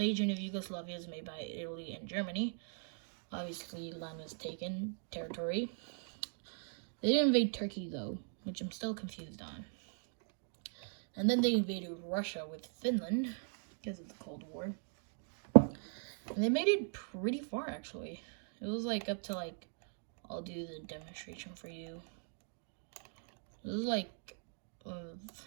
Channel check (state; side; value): silent; left; 51 dB below the other